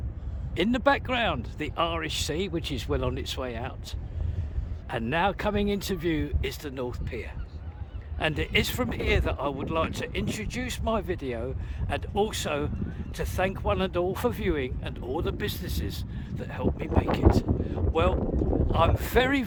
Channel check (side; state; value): both; identical; correlation 1.00